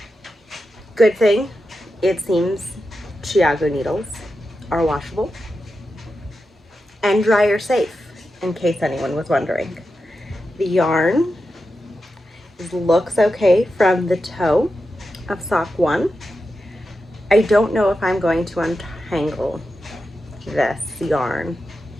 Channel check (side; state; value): both; normal; correlation 0.90